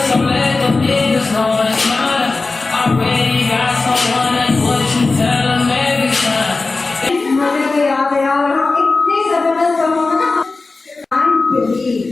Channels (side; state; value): right; quieter; 3.7 dB